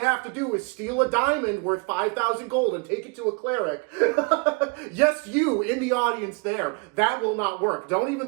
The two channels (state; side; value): quieter; left; 31.9 dB